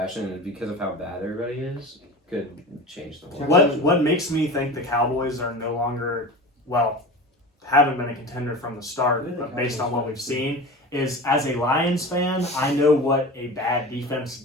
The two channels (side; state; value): both; normal; correlation 0.32